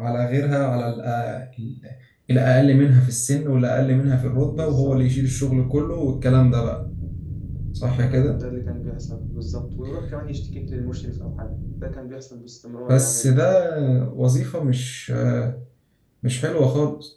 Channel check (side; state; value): both; identical; correlation 1.00